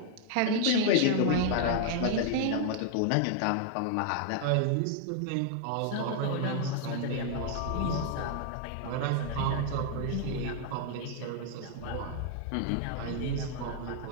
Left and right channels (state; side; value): different; both; correlation 0.00